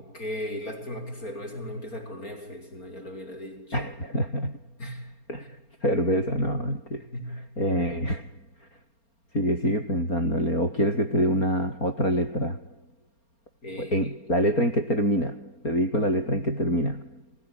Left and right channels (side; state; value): right; late; 4.3 ms